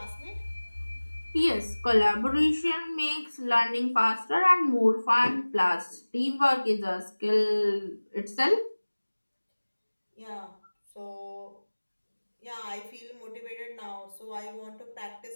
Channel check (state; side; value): inverted; both; correlation -1.00